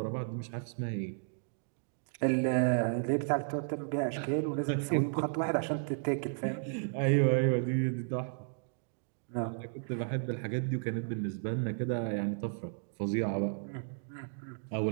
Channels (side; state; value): left; silent; digital silence